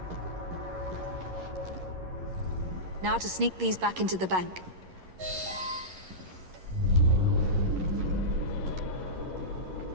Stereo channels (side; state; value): left; late; 11 ms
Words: Now to sneak these back into the bank.